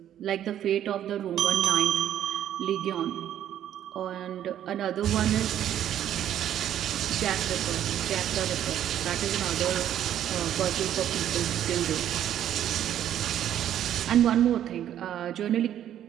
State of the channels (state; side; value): quieter; left; 10.9 dB